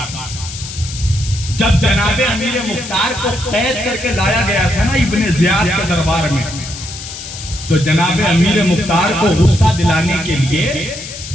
جب جناب امیر مختار کو قید کر کے لایا گیا تھا نا ابن زیاد کے دربار میں، تو جناب امیر مختار کو غصہ دلانے کے لیے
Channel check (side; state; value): left; noise; hiss, 11 dB below the sound